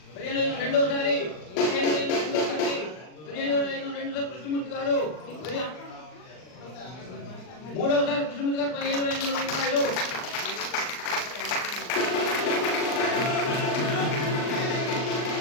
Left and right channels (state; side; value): late; right; 39 ms